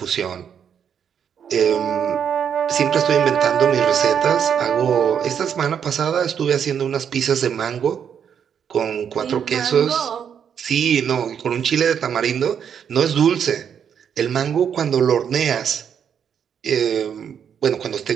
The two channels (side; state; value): left; quieter; 8.0 dB